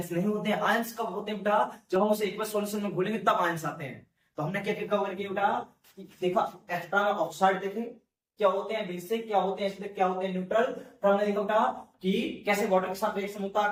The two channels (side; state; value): both; identical; correlation 1.00